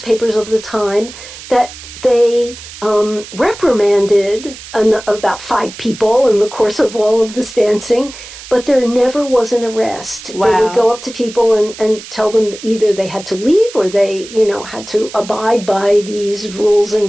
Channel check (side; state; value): right; noise; hiss, 15 dB below the sound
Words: of the time that they reprimanded about 5 people in the course of all of this dancing, but there never was an arrest. Wow. They would go up to people and tell them that either they had to leave or they, had to abide by these rules